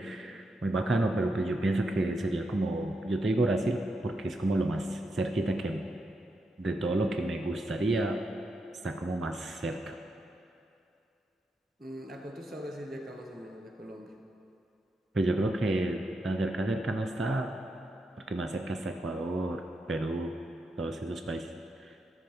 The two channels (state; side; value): normal; both; correlation 0.84